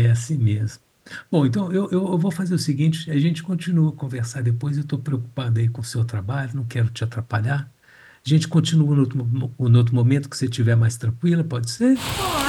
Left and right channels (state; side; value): identical; both; correlation 1.00